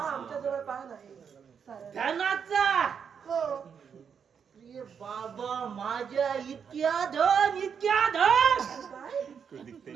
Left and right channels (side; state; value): left; quieter; 7.0 dB